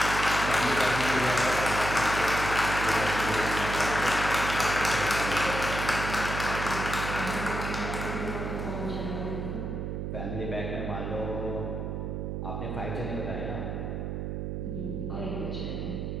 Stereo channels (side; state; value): right; noise; hum, 3 dB below the sound